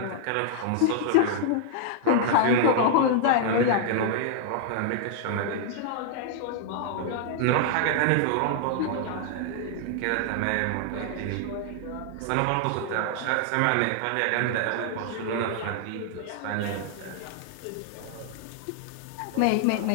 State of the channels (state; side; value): different; both; correlation -0.01